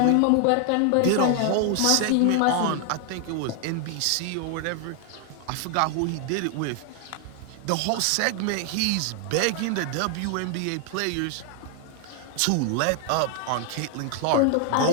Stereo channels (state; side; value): different; both; correlation 0.00